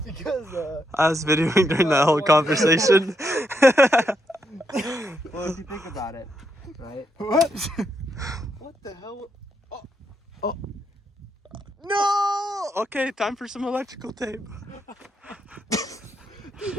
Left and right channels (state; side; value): normal; both; correlation 0.79